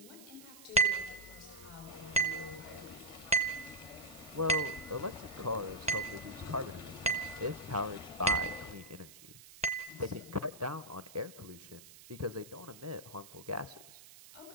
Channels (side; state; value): right; noise; hiss, 18 dB below the sound